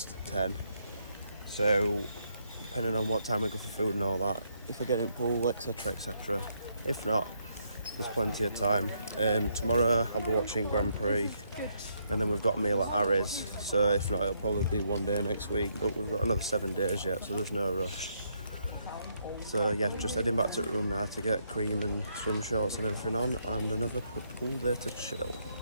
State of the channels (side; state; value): both; inverted; correlation -0.75